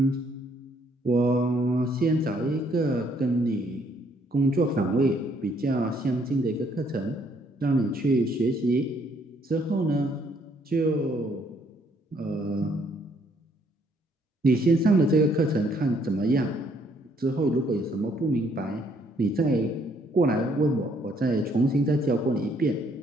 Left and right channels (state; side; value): normal; both; correlation 0.67